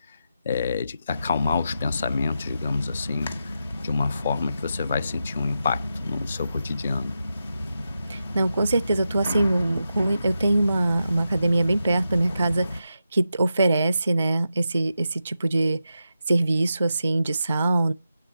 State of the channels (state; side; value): inverted; both; correlation -0.88